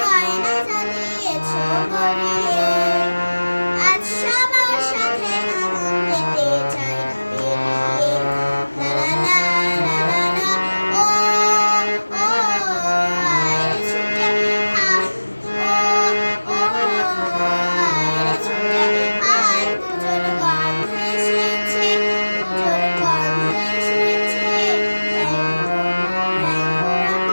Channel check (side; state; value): both; inverted; correlation -1.00